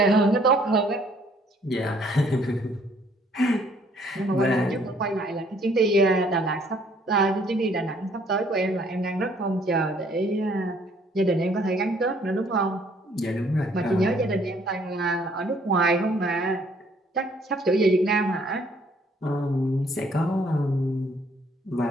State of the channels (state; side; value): normal; both; correlation 0.62